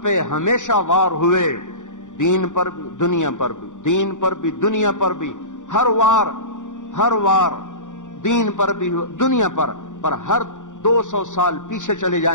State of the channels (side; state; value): right; late; 0.86 ms